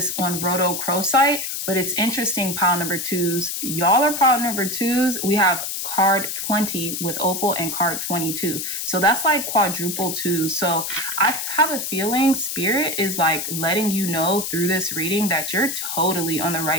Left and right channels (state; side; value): noise; left; hiss, 4 dB below the sound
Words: on rhodochrosite, but it's interesting, pile number twos. Y'all are pile number twos. We have card 20 with opal and card 22. So that's like quadruple twos. So I have a feeling spirit is like letting you know through this reading that you're totally on the